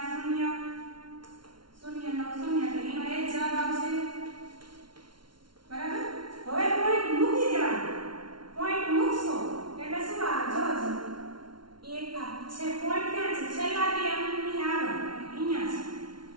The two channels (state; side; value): late; left; 0.73 ms